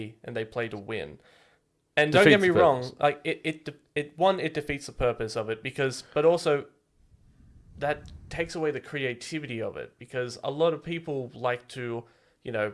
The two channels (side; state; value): both; identical; correlation 1.00